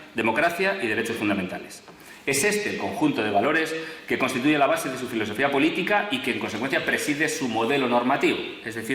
democracia y derechos fundamentales. Es este el conjunto de valores que constituye la base de su filosofía política y que en consecuencia preside su modelo normativo, es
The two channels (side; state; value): both; identical; correlation 1.00